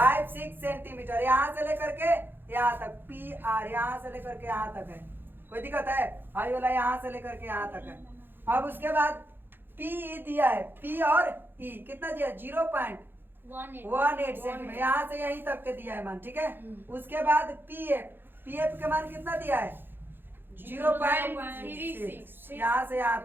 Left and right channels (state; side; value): late; left; 0.10 ms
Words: सेंटीमीटर यहाँ से लेकर के यहाँ तक पी आर यहाँ से लेकर के यहाँ तक है कोई दिक्कत है आई वाला यहाँ से लेकर के यहाँ तक है। अब उसके बाद पी ई दिया है पी और ई कितना दिया 0.18 सेंटीमीटर यहाँ से यहीं तक के दिया है मान ठीक है। उसके बाद पी एफ का मान कितना दिया है 0.36 यहाँ से यहाँ